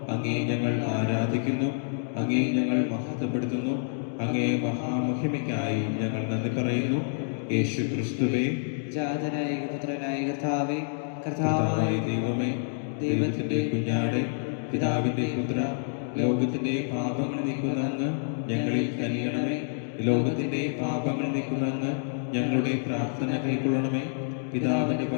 അങ്ങേ ഞങ്ങൾ ആരാധിക്കുന്നു, അങ്ങേ ഞങ്ങൾ മഹത്വപ്പെടുത്തുന്നു. അങ്ങേ മഹാമഹിമയ്ക്കായി ഞങ്ങൾ നന്ദി പറയുന്നു. യേശു ക്രിസ്തുവേ, ജാതനായ പുത്രനായ കർത്താവേ, കർത്താവായ ദൈവമേ, ദൈവത്തിന്റെ കുഞ്ഞാടെ, പിതാവിന്റെ പുത്ര, ലോകത്തിന്റെ പാപങ്ങൾ നീക്കുന്ന അങ്ങ് ഞങ്ങളിൽ കനിയണമേ. ലോകത്തിന്റെ പാപങ്ങൾ നീക്കുന്ന അങ്ങ് ഞങ്ങളുടെ പ്രാർത്ഥന കൈക്കൊള്ളണമേ. പിതാവിന്റെ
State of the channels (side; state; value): right; silent; digital silence